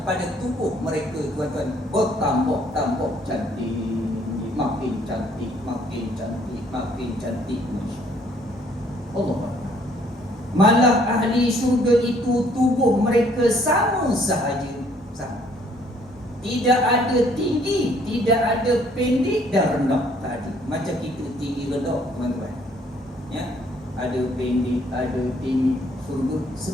pada tubuh mereka tuan-tuan, bertambah cantik, makin cantik, makin cantik, makin cantik. Allah Akbar. Malah ahli syurga itu tubuh mereka sama sahaja, sama. Tidak ada tinggi, tidak ada pendek dan rendah tadi. Macam kita tinggi rendah tuan-tuan. Ya, ada pendek, ada tinggi, surga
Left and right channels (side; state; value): both; normal; correlation 0.62